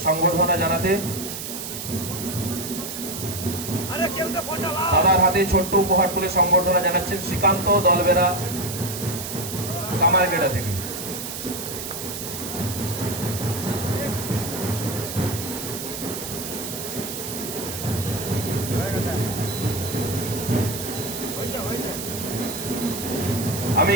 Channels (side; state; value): right; noise; hiss, 7 dB below the sound